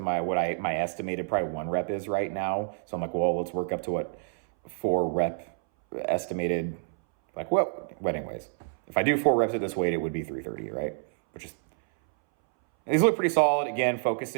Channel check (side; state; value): left; silent; 59 dB below the other